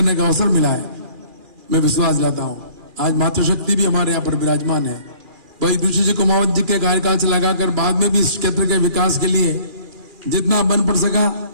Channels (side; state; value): left; late; 2.4 ms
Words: का अवसर मिला है, मैं विश्वास दिलाता हूं आज मातृशक्ति भी हमारे यहाँ पर विराजमान है। भाई युधिष्ठिर जी कुमावत जी के कार्यकाल से लगाकर बाद में भी इस क्षेत्र के विकास के लिए जितना बन पड़ सका